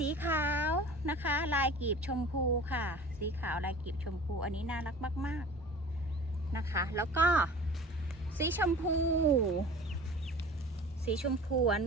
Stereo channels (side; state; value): both; normal; correlation 0.41